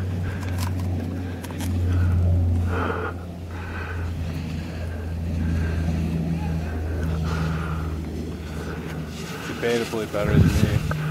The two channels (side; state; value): both; identical; correlation 1.00